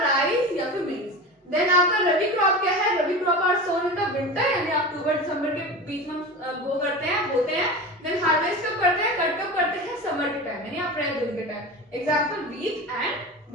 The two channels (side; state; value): both; normal; correlation 0.29